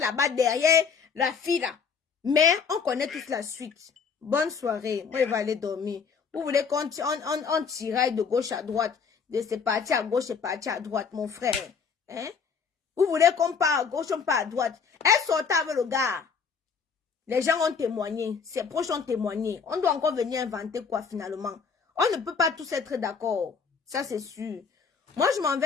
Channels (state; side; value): quieter; right; 5.9 dB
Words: derrière la fille là. Mais on connaît toute la suite. Bonne soirée. Moi, je vais aller dormir. Vous voulez qu'on tiraille de gauche à droite, de c'est parti à gauche et parti à droite, mon frère. Hein? Vous voulez qu'on part à gauche, on part à droite. Elle sortait avec le gars. Les gens ont témoigné. Ses proches ont témoigné. On doit encore venir inventer quoi finalement? On ne peut pas tous être d'accord. Ça, c'est sûr. Moi, je m'en